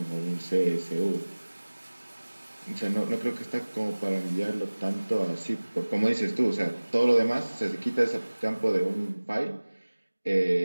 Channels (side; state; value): both; inverted; correlation -1.00